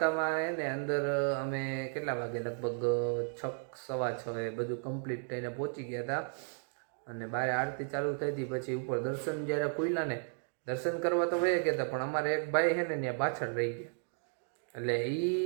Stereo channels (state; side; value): silent; left; 55 dB below the other